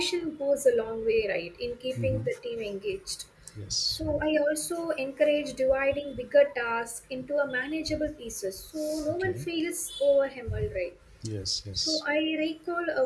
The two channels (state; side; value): identical; both; correlation 1.00